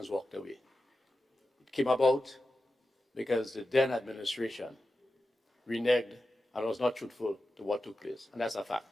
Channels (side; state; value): both; normal; correlation 0.91